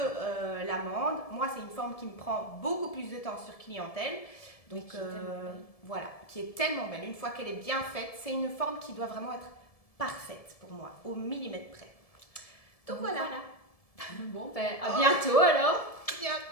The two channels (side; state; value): right; late; 1.7 ms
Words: l'amande. Moi, c'est une forme qui me prend beaucoup plus de temps sur clientèle. Donc voilà, qui est tellement belle. Une fois qu'elle est bien faite, c'est une forme qui doit vraiment être parfaite pour moi, au millimètre près. Donc voilà. Bon, ben à bientôt alors.